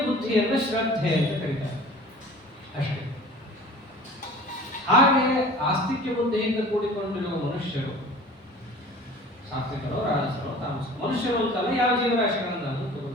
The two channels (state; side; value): normal; both; correlation 0.43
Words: ಬುದ್ಧಿಯನ್ನು ಶ್ರದ್ಧೆ ಅಂತ ಕರೀತಾರೆ ಅಷ್ಟೇ. ಹಾಗೆ ಆಸ್ತಿಕ್ಯ ಬುದ್ಧಿಯಿಂದ ಕೂಡಿಕೊಂಡಿರುವ ಮನುಷ್ಯರು ಸಾತ್ವಿಕರೋ ರಾಜಸರೋ ತಾಮಸರೋ, ಮನುಷ್ಯರು ಅಂತಲ್ಲ, ಯಾವ ಜೀವರಾಶಿಗಳನ್ನು